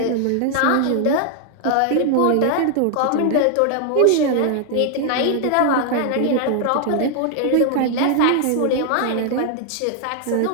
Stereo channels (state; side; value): different; both; correlation 0.00